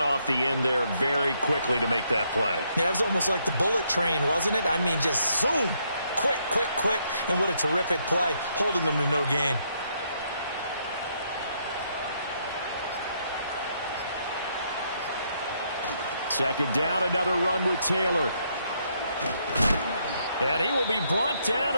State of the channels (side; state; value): both; inverted; correlation -0.74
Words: the end there very quickly to make that play. Yeah, it was almost like the bullet train, wasn't it? I mean, just zoom. Quick, quick, quick. And what a terrific play, holding them to no gain. Second down, another run with Taylor. And he will be brought down